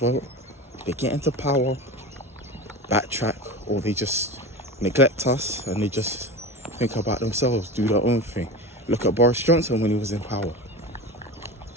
they get into power, backtrack, or they just neglect us and they just think about themselves, do their own thing. Look at Boris Johnson when he was in power.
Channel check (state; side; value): normal; both; correlation 0.29